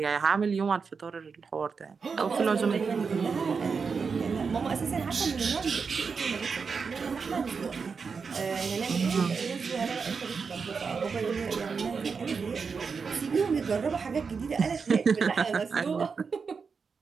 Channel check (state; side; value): quieter; left; 5.4 dB